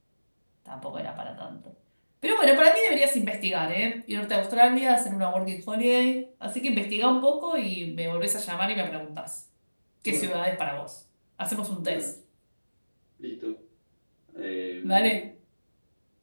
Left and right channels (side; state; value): both; inverted; correlation -1.00